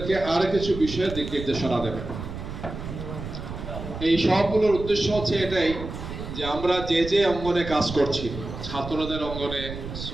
আরো কিছু বিষয়ের দিক নির্দেশনা দেবেন। এই সবগুলোর উদ্দেশ্য হচ্ছে এটাই যে আমরা যে যে অঙ্গনে কাজ করছি, ছাত্রদের অঙ্গনে,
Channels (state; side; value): noise; right; rumble, 9 dB below the sound